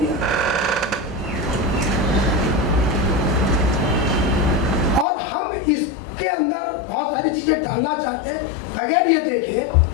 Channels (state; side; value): drops out; right; at 5.1 s